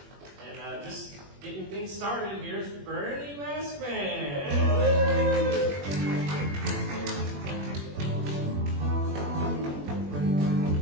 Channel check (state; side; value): late; left; 21 ms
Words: And just getting things started, here's Bernie Maskman.